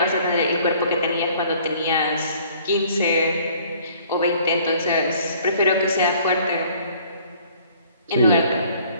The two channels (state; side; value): inverted; both; correlation -0.56